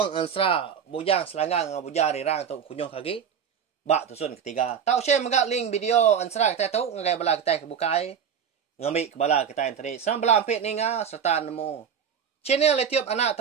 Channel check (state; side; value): quieter; left; 7.6 dB